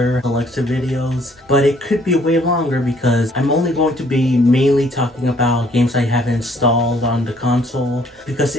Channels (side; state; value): both; normal; correlation 0.62